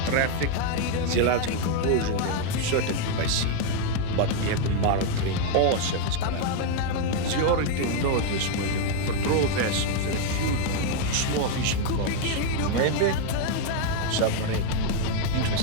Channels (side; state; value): both; different; correlation 0.01